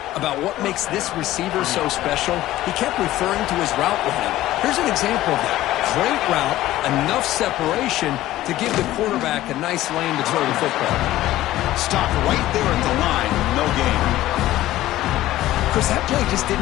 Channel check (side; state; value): right; quieter; 15.2 dB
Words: about what makes this receiver so special. He kept referring to his route running. Here's an example of that. Great route, enough separation to give the quarterback a nice lane to throw the football. Stopped right there at the line. No gain. Chris, that play just